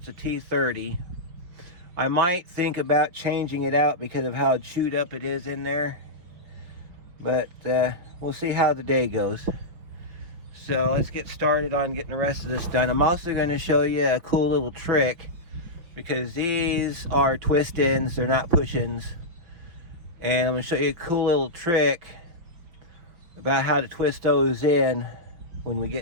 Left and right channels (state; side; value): late; left; 5.8 ms